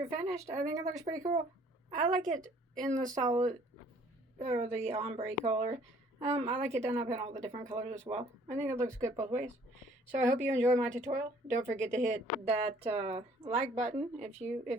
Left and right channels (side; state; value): both; normal; correlation 0.58